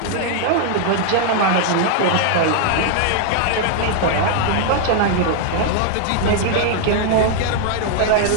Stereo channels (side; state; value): both; different; correlation 0.00